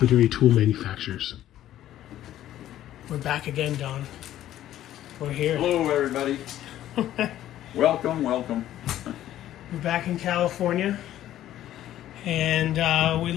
tool manufacturers. We're back again, Don. We're here. Hello, everybody. Welcome. We're back in California, and we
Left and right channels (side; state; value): right; quieter; 12.8 dB